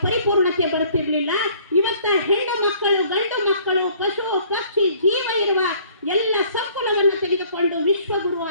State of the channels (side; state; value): both; inverted; correlation -0.57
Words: ಪರಿಪೂರ್ಣತೆ ಬರುತ್ತಿರ್ಲಿಲ್ಲ. ಇವತ್ತ ಹೆಣ್ಣು ಮಕ್ಕಳು, ಗಂಡು ಮಕ್ಕಳು, ಪಶು ಪಕ್ಷಿ ಜೀವ ಇರುವ ಎಲ್ಲ ಸಂಕುಲವನ್ನು ತೆಗೆದುಕೊಂಡು ವಿಶ್ವಗುರು